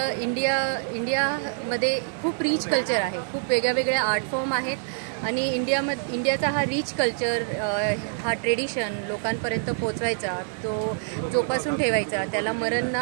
इंडियामध्ये खूप रिच कल्चर आहे, खूप वेगळ्या आर्ट फॉर्म आहेत आणि इंडियाचा हा रिच कल्चर, हा ट्रेडिशन लोकांपर्यंत पोचवायचा, तो जोपासून ठेवायचा, त्याला मरण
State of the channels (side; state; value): left; silent; 61 dB below the other